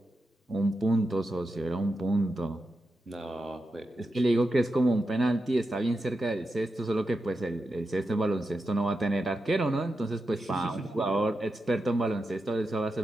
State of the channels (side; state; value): both; normal; correlation 0.88